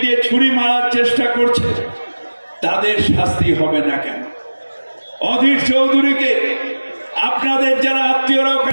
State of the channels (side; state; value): both; inverted; correlation -1.00